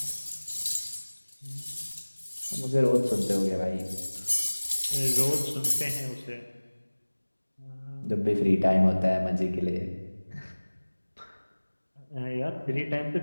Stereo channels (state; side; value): inverted; both; correlation -1.00